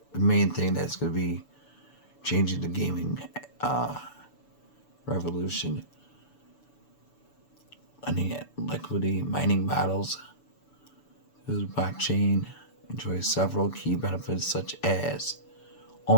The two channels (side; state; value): right; late; 6.9 ms